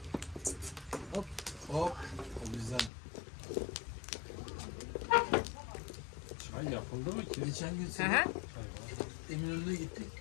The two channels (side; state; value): right; drops out; at 2.9 s